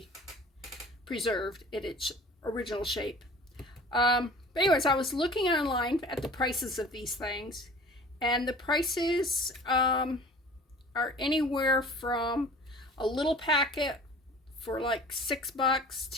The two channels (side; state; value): both; normal; correlation 0.45